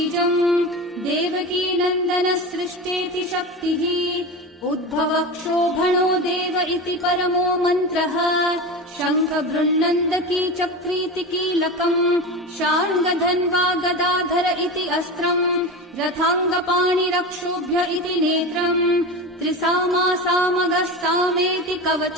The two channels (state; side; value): normal; both; correlation 0.25